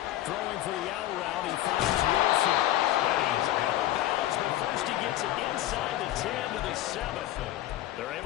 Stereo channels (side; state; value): right; quieter; 14.2 dB